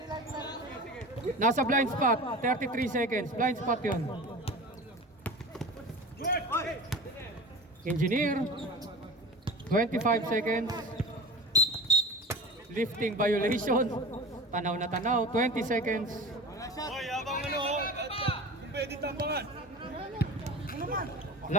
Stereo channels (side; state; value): both; normal; correlation 0.34